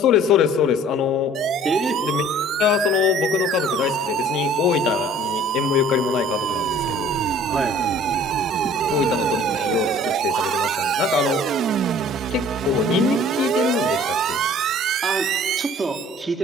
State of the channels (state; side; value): normal; both; correlation 0.51